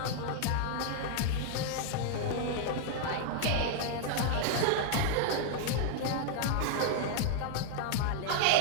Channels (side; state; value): both; different; correlation -0.01